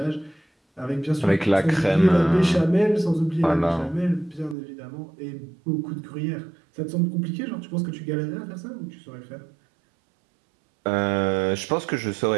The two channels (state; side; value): drops out; left; at 4.5 s